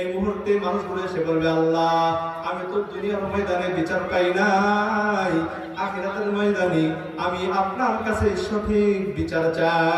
মুহূর্তে মানুষগুলো এসে বলবে, আল্লাহ, আমি তো দুনিয়ার ময়দানে বিচার পাই নাই, আখিরাতের ময়দানে আমি আপনার কাছে সঠিক বিচার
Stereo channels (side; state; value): both; identical; correlation 1.00